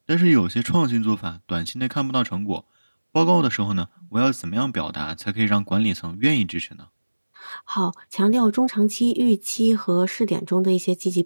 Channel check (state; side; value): inverted; both; correlation -1.00